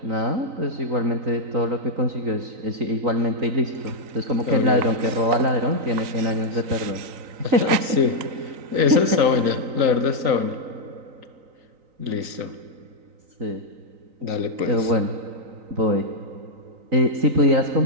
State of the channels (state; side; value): late; left; 3.9 ms